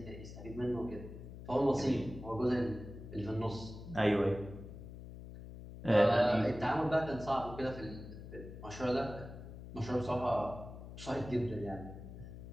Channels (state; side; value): noise; left; hum, 12 dB below the sound